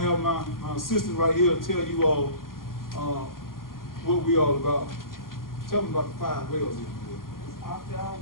have my assistant right here tell you all what we all about. Tell them about the 5 whales.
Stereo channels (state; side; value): late; right; 0.91 ms